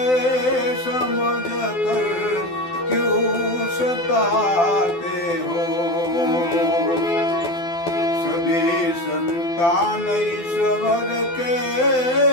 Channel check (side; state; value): right; late; 12 ms